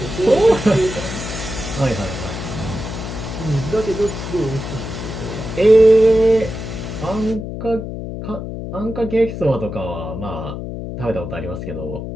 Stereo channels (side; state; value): left; noise; hum, 7 dB below the sound